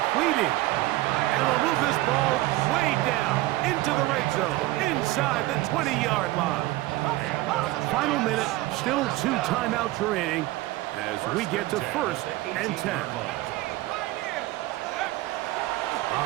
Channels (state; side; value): quieter; left; 18.0 dB